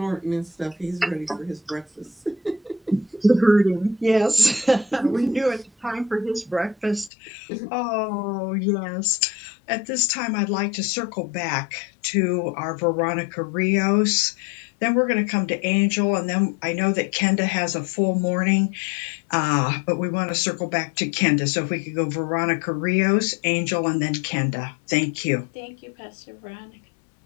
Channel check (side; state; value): right; drops out; at 7.1 s